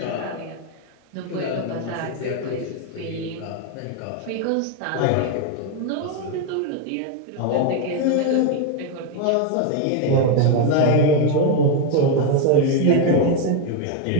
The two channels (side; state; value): both; different; correlation 0.01